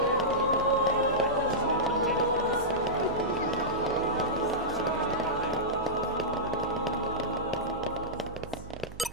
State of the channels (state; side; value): noise; right; hum, 15 dB below the sound